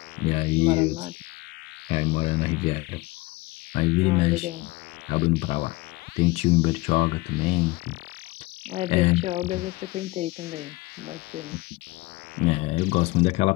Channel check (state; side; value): quieter; right; 21.9 dB